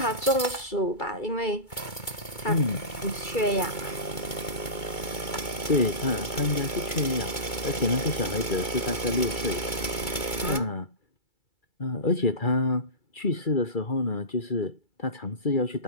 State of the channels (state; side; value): late; right; 2.2 ms